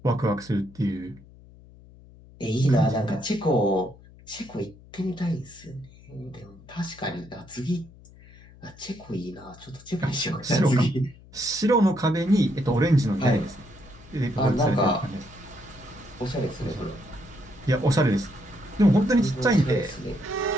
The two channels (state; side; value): noise; left; hum, 22 dB below the sound